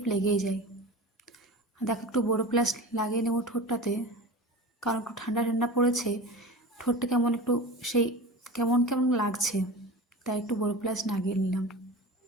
লেগেই যায়। দেখো, একটু বড়ো প্লাস লাগিয়ে নেবো ঠোঁটটাতে, কারণ একটু ঠান্ডা ঠান্ডা পড়েছে। ঠোঁটটা কেমন একটু সেই কেমন কেমন লাগছে, তাই একটু বড়ো প্লাস লাগিয়ে নিলাম।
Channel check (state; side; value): normal; both; correlation 0.32